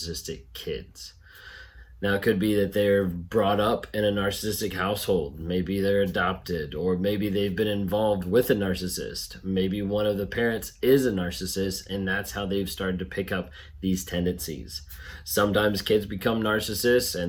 kids? Now, it could be that they're brought up in a narcissistic household. Maybe they're adopted, or maybe they've been involved with a narcissist. Maybe one of the parents is a narcissist, and that's how they've started to pick up these tendencies. Sometimes kids become narcissists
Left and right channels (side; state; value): both; identical; correlation 1.00